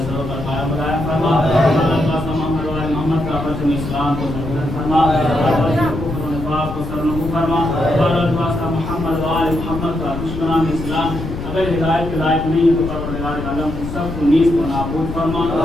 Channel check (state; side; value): noise; left; rumble, 7 dB below the sound